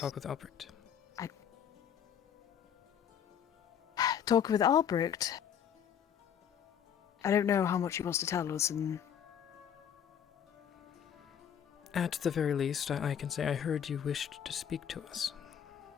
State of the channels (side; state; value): right; quieter; 8.6 dB